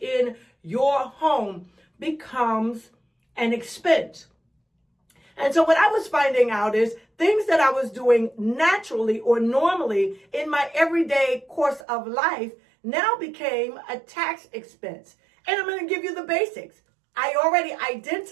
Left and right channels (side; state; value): left; drops out; at 11.8 s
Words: your home, becomes an expense. And so what I was finding out is things that I was doing naturally or normally in my everyday course of life now became a tax expense. And I'm going to give you the basics. I already